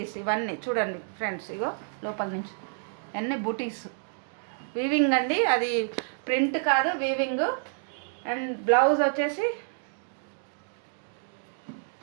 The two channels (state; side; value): silent; left; digital silence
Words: ఇవన్నీ చూడండి ఫ్రెండ్స్, ఇగో లోపల నుంచి అన్నీ బూటీస్ వీవింగ్ అండి, అది ప్రింట్ కాదు వీవింగ్. అండ్ బ్లౌజ్ వచ్చేసి